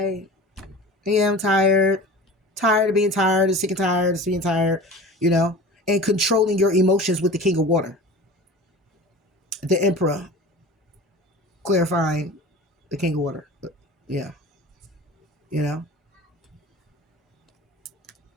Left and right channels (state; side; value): normal; both; correlation 0.38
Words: Yeah, I'm tired. Tired of being tired, and sick and tired of being tired, and controlling your emotions with the King of Water. The Emperor. Clarifying the King of Water. Yeah.